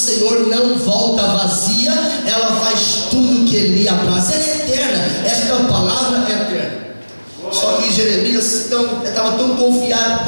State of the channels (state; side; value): inverted; both; correlation -1.00